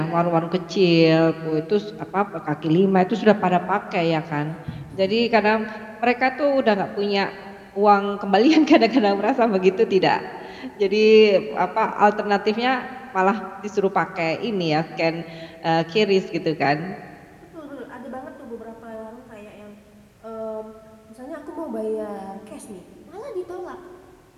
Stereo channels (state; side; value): identical; both; correlation 1.00